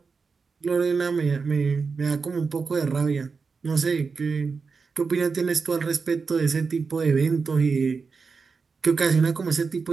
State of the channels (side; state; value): left; quieter; 4.9 dB